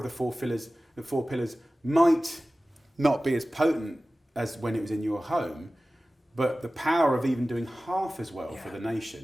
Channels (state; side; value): normal; both; correlation 0.96